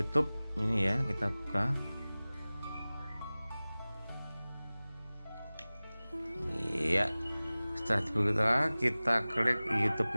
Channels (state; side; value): inverted; both; correlation -0.99